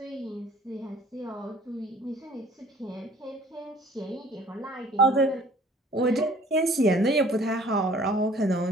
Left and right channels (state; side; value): normal; both; correlation 0.53